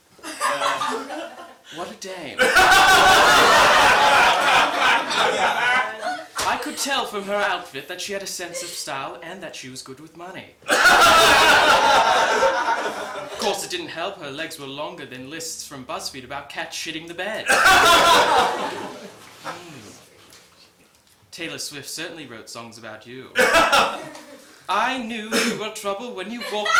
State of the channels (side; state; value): both; identical; correlation 1.00